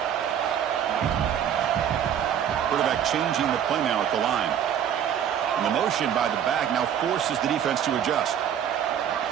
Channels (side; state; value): left; quieter; 9.3 dB